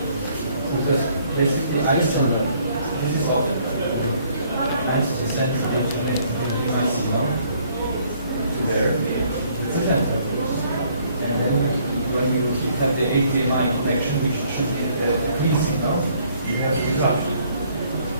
because basically I send them. This is often times to send the signal to there. It's a method, and then when you have the HDMI connection, which should be a clean signal, you have to drop.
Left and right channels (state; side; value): inverted; both; correlation -0.64